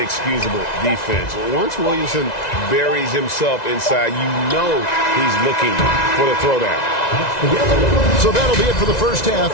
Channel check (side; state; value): right; late; 1.9 ms